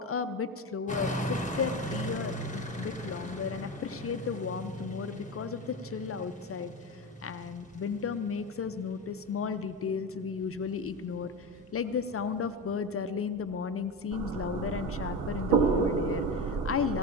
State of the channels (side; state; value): both; normal; correlation 0.22